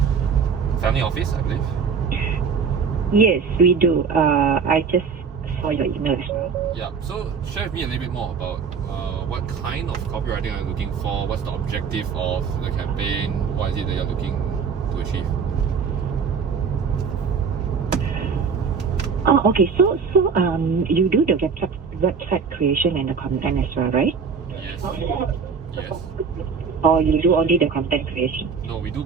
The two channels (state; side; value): quieter; left; 5.8 dB